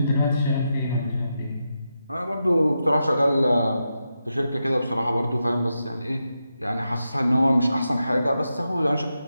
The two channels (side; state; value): both; inverted; correlation -0.87